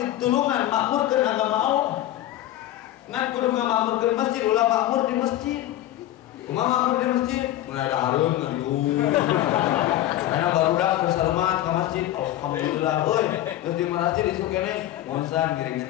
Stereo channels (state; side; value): quieter; right; 13.8 dB